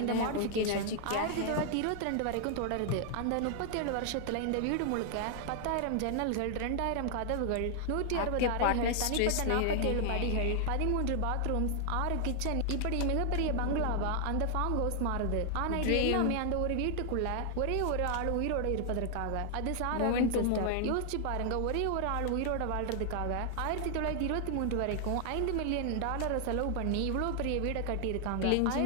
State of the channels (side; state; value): both; different; correlation 0.00